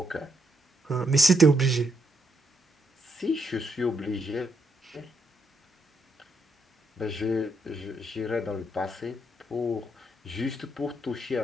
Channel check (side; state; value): both; normal; correlation 0.77